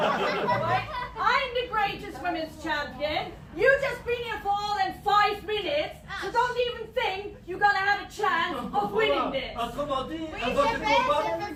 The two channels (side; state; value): both; identical; correlation 1.00